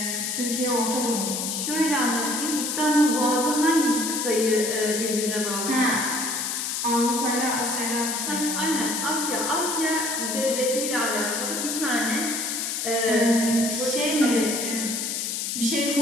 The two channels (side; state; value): left; noise; hiss, 2 dB below the sound